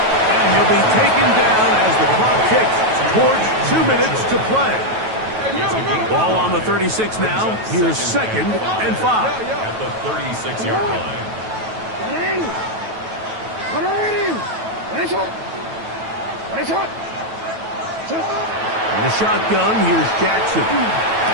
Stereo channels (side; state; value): left; late; 9.2 ms